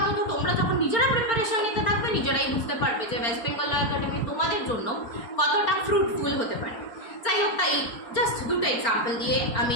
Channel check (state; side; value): late; right; 4.4 ms